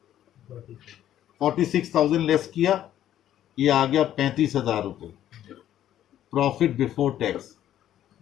46,000 लेस किया, ये आ गया 35,000 रुपए। प्रॉफिट बिफोर टैक्स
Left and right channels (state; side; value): quieter; right; 11.7 dB